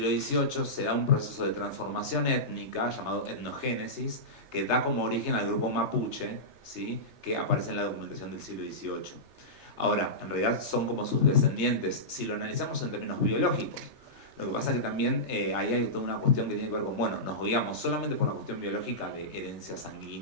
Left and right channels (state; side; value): late; left; 3.3 ms